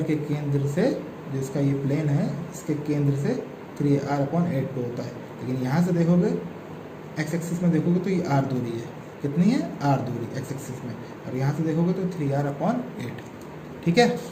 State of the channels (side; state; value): both; identical; correlation 1.00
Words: के केंद्र से, जो इसका ये प्लेन है, इसके केंद्र से 3r/8 पे होता है। लेकिन यहाँ से देखोगे, x एक्सिस में देखोगे तो ये r दूरी है, कितनी है? r दूरी x एक्सिस में, और यहाँ से देखोगे तो 3r/8, ठीक है।